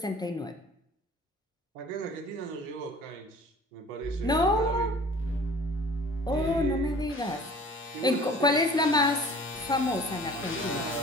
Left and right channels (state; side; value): normal; both; correlation 0.47